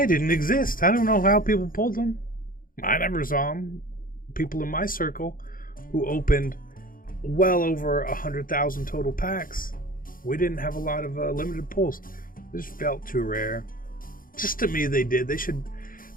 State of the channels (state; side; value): late; right; 0.41 ms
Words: didn't exist. I don't know how people pulled them. I never saw them. People in my circle who opened well over 100,000 total packs, we didn't have a lot of limited pulls. This felt too rare. Just to me, they did. They